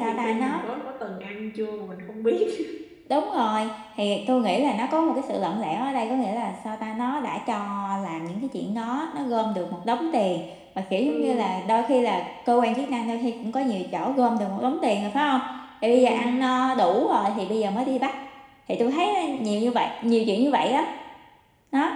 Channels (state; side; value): identical; both; correlation 1.00